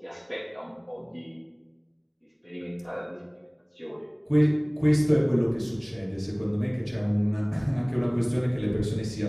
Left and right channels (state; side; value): identical; both; correlation 1.00